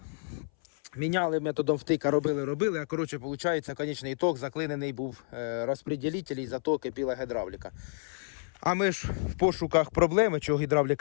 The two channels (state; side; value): silent; right; 58 dB below the other